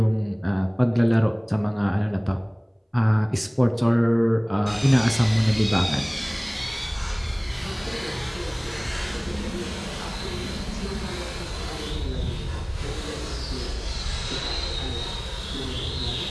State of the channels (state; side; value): identical; both; correlation 1.00